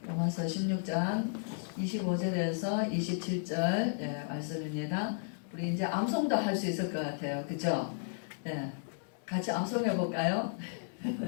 로마서 16장 25절에서 27절 말씀입니다. 우리 이제 암송도 할 수 있을 것 같아요. 그죠? 같이 암송해 볼까요?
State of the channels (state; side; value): silent; right; digital silence